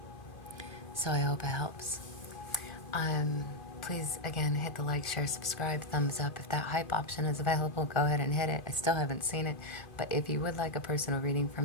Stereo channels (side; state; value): right; late; 2.5 ms